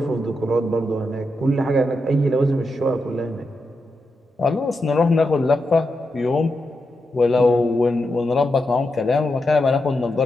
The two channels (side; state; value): both; normal; correlation 0.86